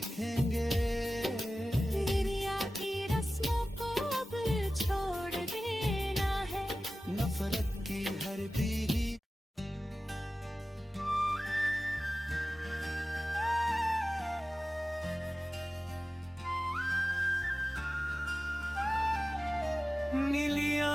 दुनिया की रस्मों को अब छोड़ देना है, नफरत की हर बीड़ी नीली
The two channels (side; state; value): both; normal; correlation 0.96